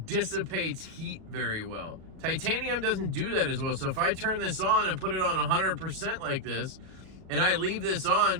heat very well. Titanium doesn't do that as well. So if I turn this on and put it on 100% like this, and I leave this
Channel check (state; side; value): late; left; 37 ms